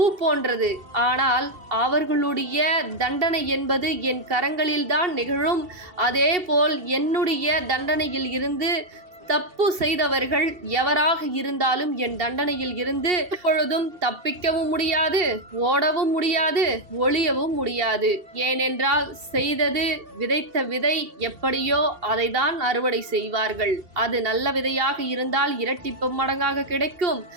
போன்றது. ஆனால் அவர்களுடைய தண்டனை என்பது என் கரங்களில்தான் நிகழும். அதேபோல் என்னுடைய தண்டனையில் இருந்து தப்பு செய்தவர்கள் எவராக இருந்தாலும் என் தண்டனையில் இருந்து எப்பொழுதும் தப்பிக்கவும் முடியாது, ஓடவும் முடியாது, ஒளியவும் முடியாது. ஏனென்றால் செய்தது, விதைத்த விதை எப்படியோ அதை தான் அறுவடை செய்வார்கள். அது நல்ல விதையாக இருந்தால் இரட்டிப்பு மடங்காக கிடைக்கும்.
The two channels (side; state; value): left; late; 2.7 ms